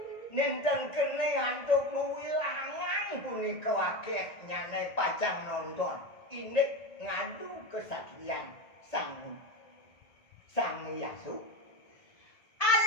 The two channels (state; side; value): late; right; 1.8 ms